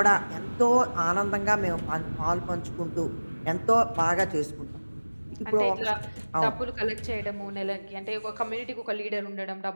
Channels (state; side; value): inverted; both; correlation -1.00